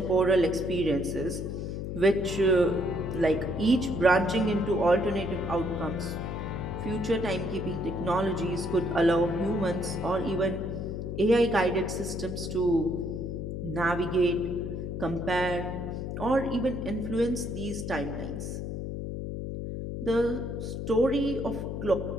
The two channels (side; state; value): left; noise; hum, 5 dB below the sound